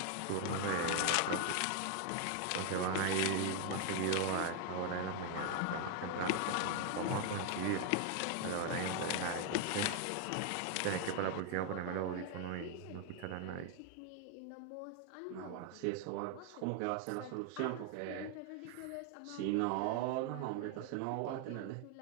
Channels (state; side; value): different; both; correlation 0.00